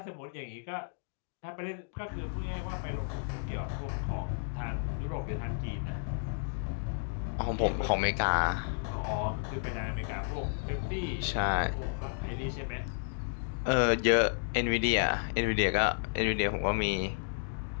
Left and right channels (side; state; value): right; silent; digital silence